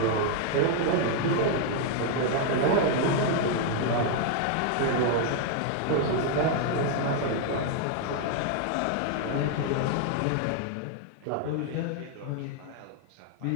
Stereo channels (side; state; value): both; different; correlation 0.00